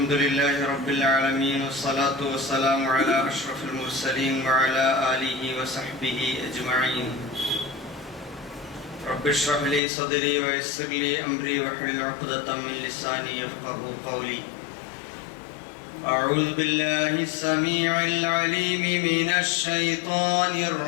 لله رب العالمين والصلاة والسلام على أشرف المرسلين وعلى آله وصحبه أجمعين. رب اشرح لي صدري ويسر لي أمري واحلل عقدة من لساني يفقهوا قولي. أعوذ بالله السميع العليم من الشيطان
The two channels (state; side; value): drops out; right; at 9.8 s